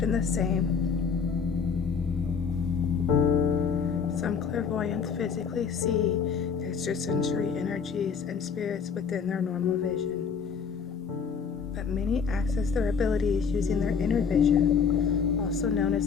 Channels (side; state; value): right; quieter; 6.1 dB